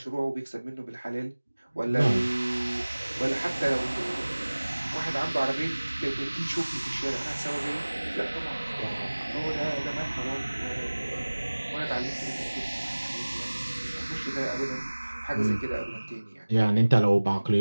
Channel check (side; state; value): both; inverted; correlation -1.00